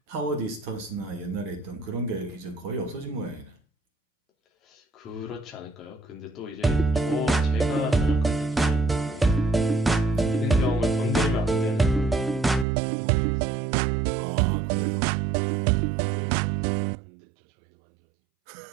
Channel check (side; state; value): left; drops out; at 12.7 s